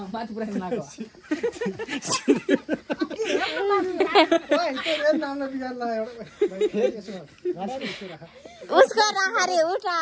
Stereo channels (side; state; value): both; identical; correlation 1.00